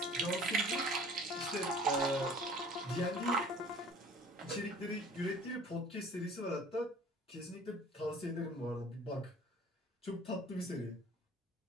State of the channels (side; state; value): both; normal; correlation 0.48